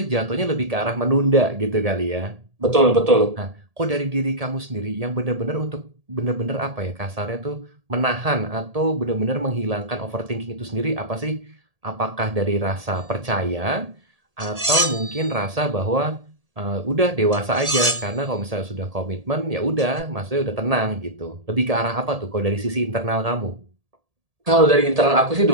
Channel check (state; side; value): late; left; 1.8 ms